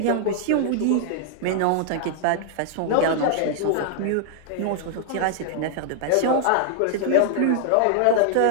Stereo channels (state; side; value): different; both; correlation -0.01